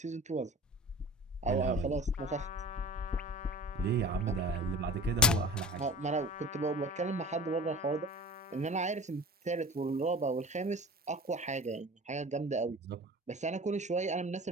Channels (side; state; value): both; normal; correlation 0.37